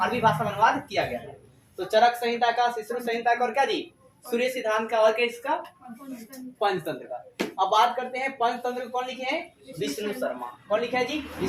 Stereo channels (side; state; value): both; identical; correlation 1.00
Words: भाषा में अनुवाद किया गया था। तो चरक संहिता का, सुश्रुत संहिता का और क्या जी सूर्य सिद्धांत का और किसका, पंचतंत्र का। अब बात करते हैं पंचतंत्र कौन लिखे हैं, विष्णु शर्मा। कौन लिखे हैं जी,